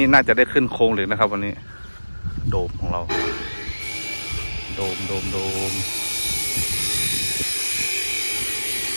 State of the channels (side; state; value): both; inverted; correlation -1.00